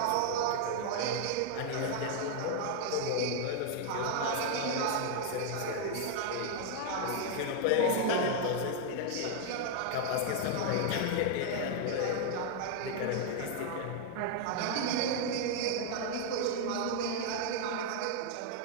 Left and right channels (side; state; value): both; different; correlation 0.00